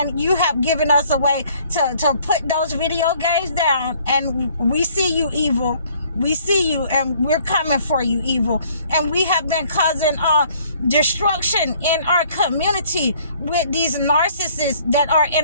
you have given us a way to put those video games down. And we see you, evil. We see you, and we're coming for you, evil. And we have been causing destruction in our community with these narcissists that are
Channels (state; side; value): inverted; both; correlation -0.59